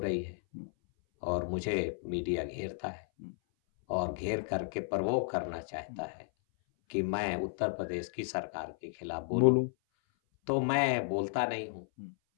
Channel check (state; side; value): silent; right; 55 dB below the other